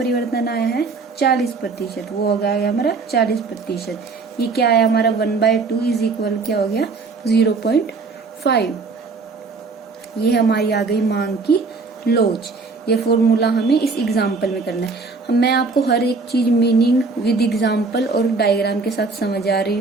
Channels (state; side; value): quieter; left; 4.2 dB